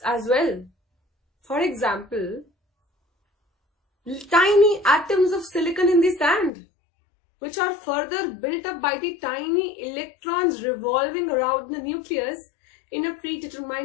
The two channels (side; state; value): right; drops out; at 6.5 s